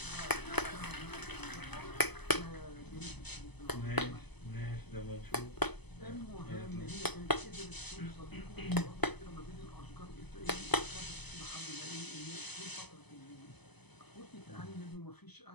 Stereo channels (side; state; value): right; late; 0.99 ms